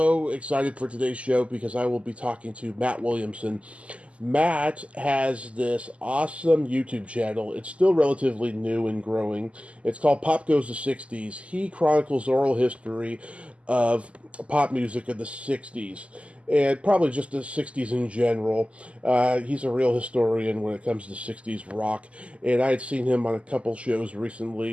excited for today's show because I will be talking to Matt Williamson. Matt has this awesome YouTube channel. It's still relatively new and growing. It's called Pop Goes the 60s. He chronicles oral history of pop music of the 60s and probably just the 60s in general. He's a real historian when it comes to 60s rock, and I had seen him on a couple shows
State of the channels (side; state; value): left; late; 0.061 ms